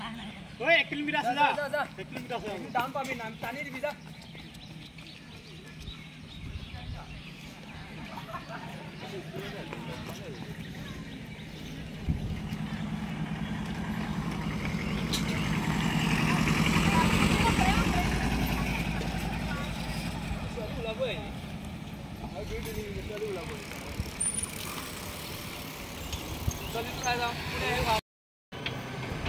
ওই 1 কিলোমিটাৰ আছে যা 1 কিলোমিটাৰ আছে ডাউন পাবি নাম টানি দিবি যা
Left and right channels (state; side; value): identical; both; correlation 1.00